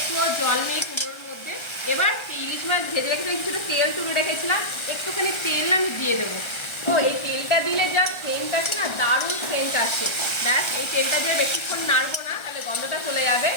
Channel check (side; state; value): right; late; 1.3 ms